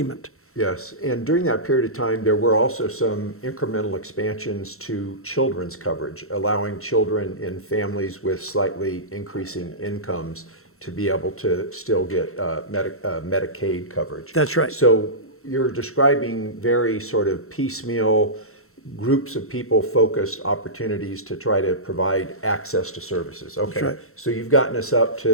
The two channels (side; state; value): right; late; 0.63 ms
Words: Yes, and during that period of time, there were also some incremental expansions to children's coverage, allowing children in families with slightly increasing incomes to be able to still get Medicaid coverage. That's right. So you're describing very sort of piecemeal groups of people focused opportunities to try to provide access to services. Okay, right. So you've gotten us up